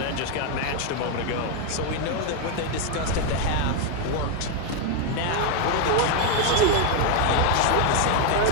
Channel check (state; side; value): different; both; correlation 0.01